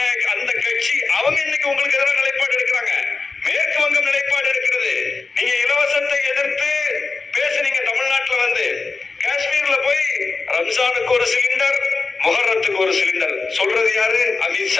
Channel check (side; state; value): right; quieter; 4.1 dB